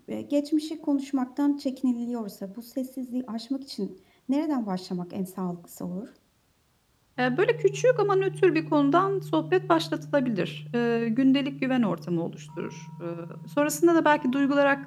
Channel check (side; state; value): both; identical; correlation 1.00